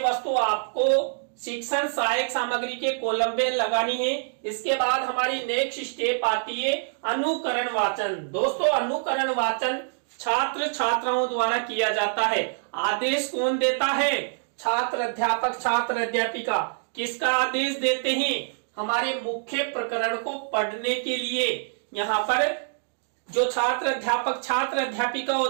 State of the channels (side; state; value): left; silent; digital silence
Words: आपको शिक्षण सहायक सामग्री के कॉलम में लगानी है। इसके बाद हमारी नेक्स्ट स्टेप आती है अनुकरण वाचन। दोस्तों अनुकरण वाचन छात्र छात्राओं द्वारा किया जाता है। आदेश कौन देता है? छात्र अध्यापक छात्र अध्यापिका। किसका आदेश देते हैं? हमारे मुख्य प्रकरण को पढ़ने के लिए। यहाँ पर जो छात्र अध्यापक छात्र अध्यापिका